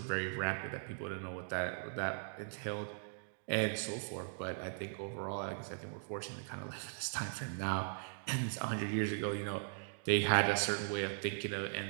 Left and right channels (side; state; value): left; silent; digital silence